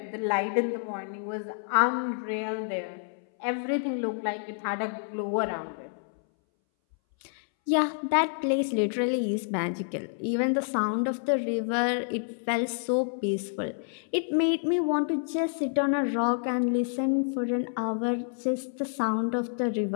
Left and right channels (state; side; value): silent; right; 59 dB below the other